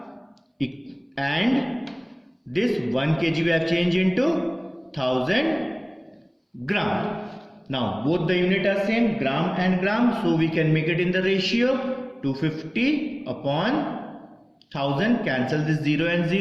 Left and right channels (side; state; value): both; identical; correlation 1.00